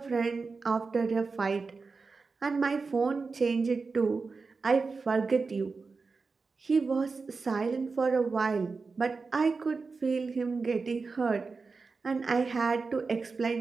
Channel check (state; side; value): quieter; left; 4.4 dB